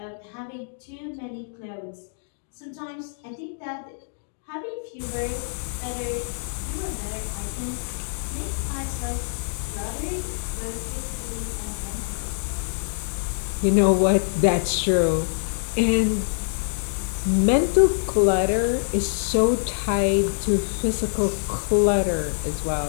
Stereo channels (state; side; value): silent; right; digital silence